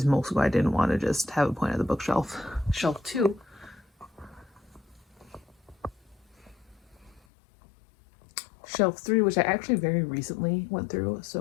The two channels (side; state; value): right; drops out; at 7.2 s